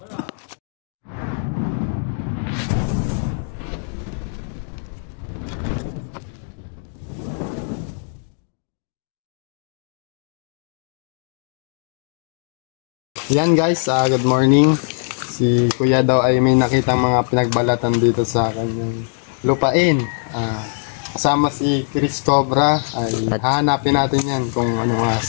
Yan guys, good morning. Si Kuya daw ay may nakitang mga pinagbalatan dito sa kanyang lupain. Kasama si Chris Cobra ay hahanapin natin yan kung ano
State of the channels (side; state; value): right; silent; 65 dB below the other